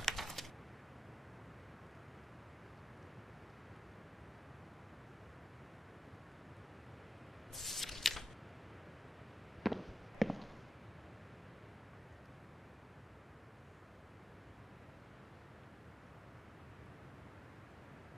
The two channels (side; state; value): both; normal; correlation 0.90